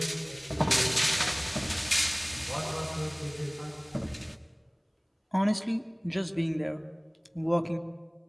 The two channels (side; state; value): both; identical; correlation 1.00